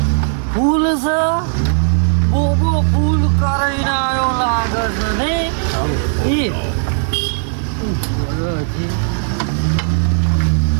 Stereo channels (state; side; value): silent; left; digital silence